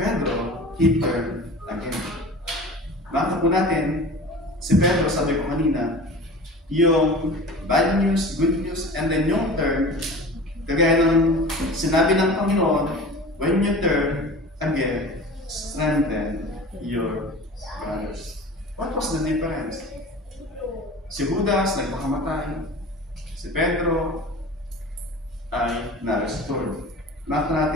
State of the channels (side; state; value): both; normal; correlation 0.37